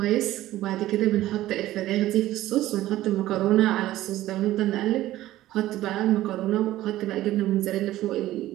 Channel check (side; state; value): left; quieter; 15.0 dB